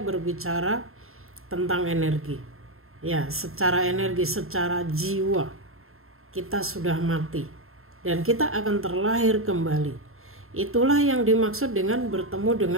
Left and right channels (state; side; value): late; left; 0.61 ms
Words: tentang energi, ya, secara energi, secara jiwa kita sudah mati dan kita akan terlahir kembali. Itulah yang dimaksud dengan bertemu